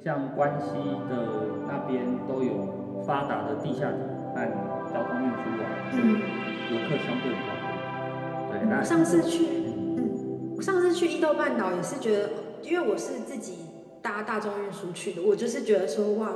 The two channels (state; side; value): identical; both; correlation 1.00